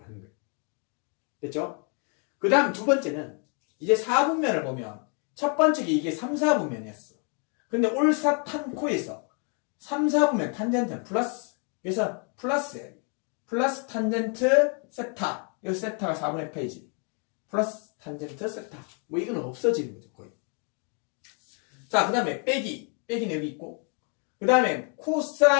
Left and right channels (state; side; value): quieter; right; 39.4 dB